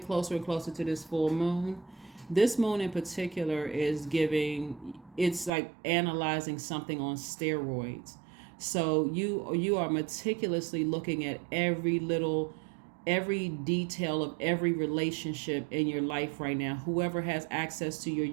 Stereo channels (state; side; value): drops out; left; at 5.5 s